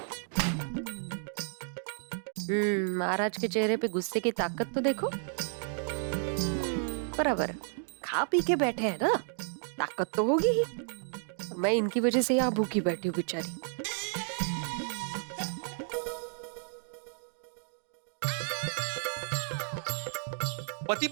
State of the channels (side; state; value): left; silent; 55 dB below the other